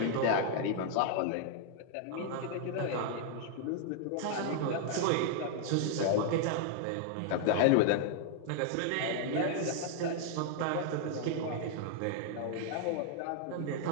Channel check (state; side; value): different; both; correlation -0.01